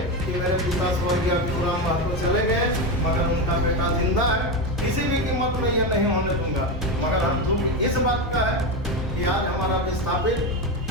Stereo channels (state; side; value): normal; both; correlation 0.15